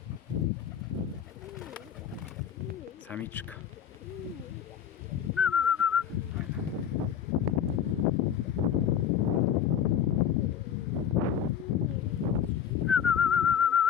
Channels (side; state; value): right; quieter; 8.7 dB